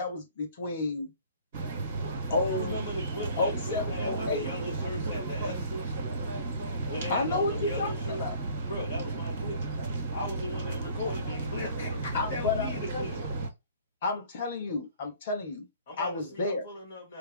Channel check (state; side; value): inverted; both; correlation -0.53